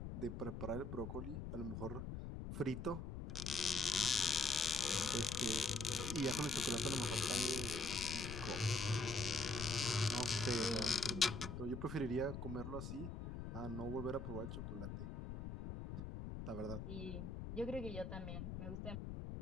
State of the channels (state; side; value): noise; left; rumble, 6 dB below the sound